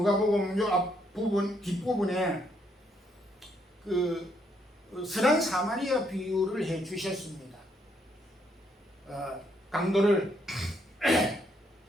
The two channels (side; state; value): both; normal; correlation 0.73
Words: 요 앞부분 뒷부분에 그 선한 사마리아 비유를 해 주셨습니다. 강도를